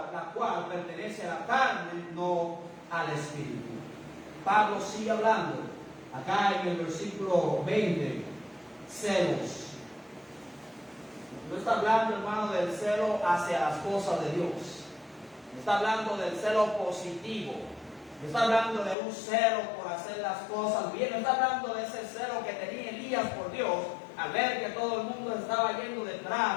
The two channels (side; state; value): right; drops out; at 18.9 s